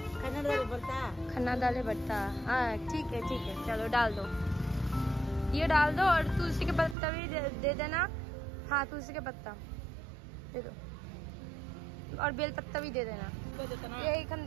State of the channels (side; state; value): left; drops out; at 7.0 s